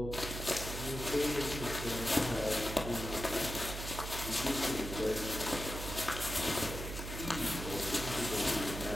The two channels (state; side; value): noise; right; hum, 6 dB below the sound